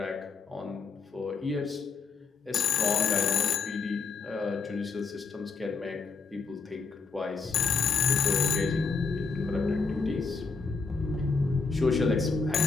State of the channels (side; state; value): right; quieter; 4.8 dB